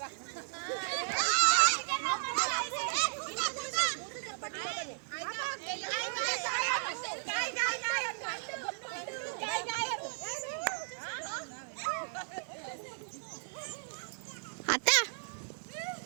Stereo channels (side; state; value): left; silent; 54 dB below the other